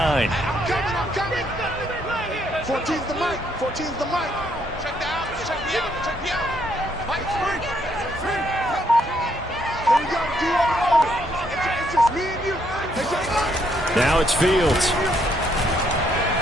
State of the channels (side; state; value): both; normal; correlation 0.72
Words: coming. 14's the mic. 14's the mic. Check the out. Check me out. Check me out. Mike, free. Here we go. D-O-O. It's just me and you. Now it's Fields.